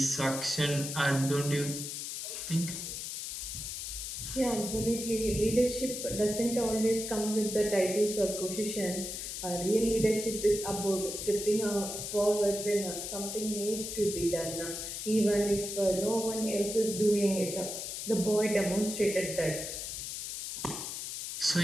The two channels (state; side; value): noise; left; hiss, 6 dB below the sound